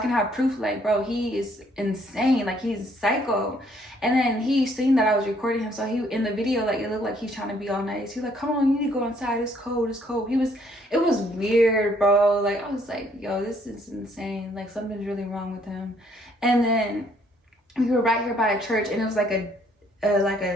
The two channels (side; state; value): both; normal; correlation 0.65